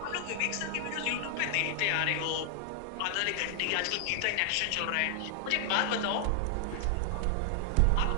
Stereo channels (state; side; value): different; both; correlation 0.00